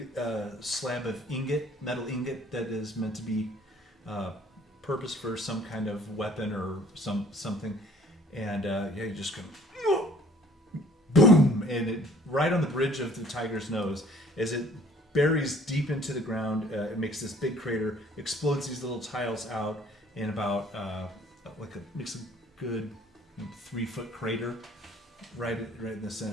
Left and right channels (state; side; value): normal; both; correlation 0.55